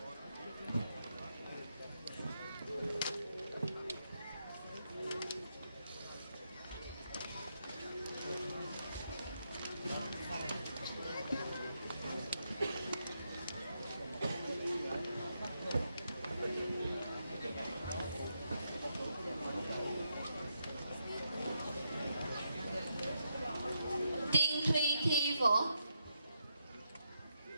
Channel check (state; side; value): inverted; both; correlation -0.81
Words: Tiên Thùy Thi Võ,